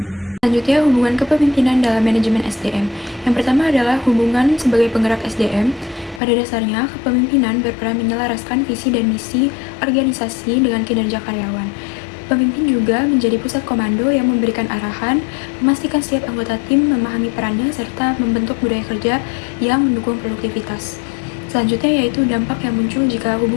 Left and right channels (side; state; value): right; drops out; at 6.2 s